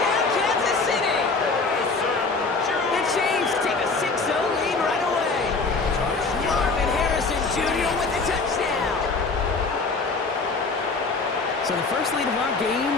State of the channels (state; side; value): quieter; right; 4.1 dB